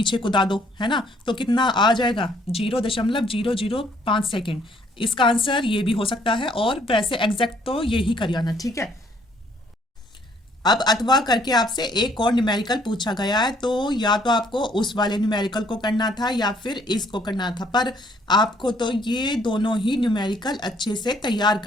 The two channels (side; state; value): both; normal; correlation 0.64